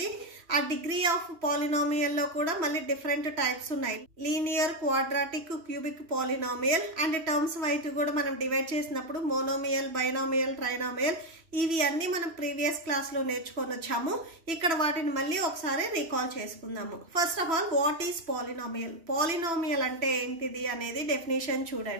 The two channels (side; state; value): left; late; 3.0 ms